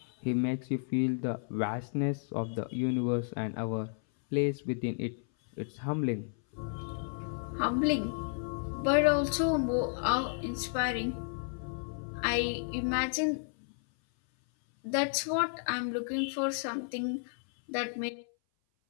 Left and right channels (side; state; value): right; silent; 56 dB below the other